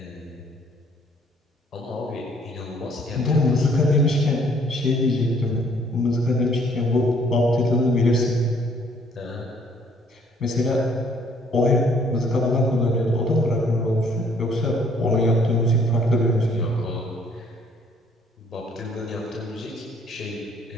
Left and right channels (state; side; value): normal; both; correlation 0.62